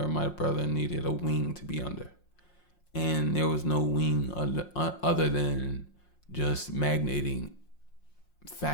my brother needed a wing to be under, and there was no wing other than just magnating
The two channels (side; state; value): right; late; 5.6 ms